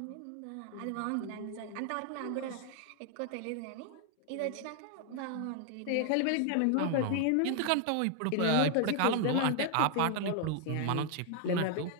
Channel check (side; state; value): both; different; correlation 0.00